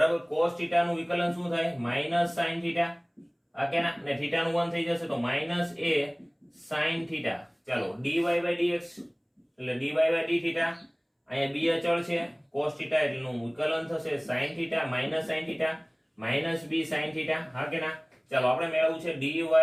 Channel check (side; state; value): both; identical; correlation 1.00